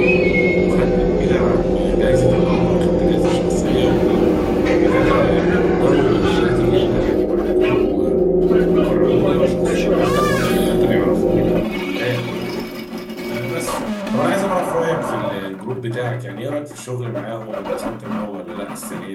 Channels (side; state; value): both; identical; correlation 1.00